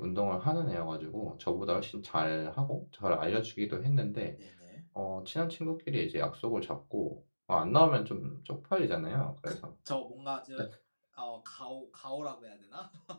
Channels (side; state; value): both; inverted; correlation -1.00